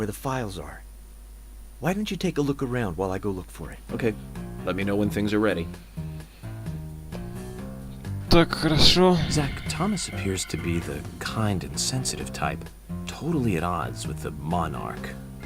the files are. Why don't you take a look around while I go look for it? Okay. Let me know when things are ready. Так, хорошо. Zach, Thomas appears to be the kind and sensitive type, totally at odds with the monarch.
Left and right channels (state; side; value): identical; both; correlation 1.00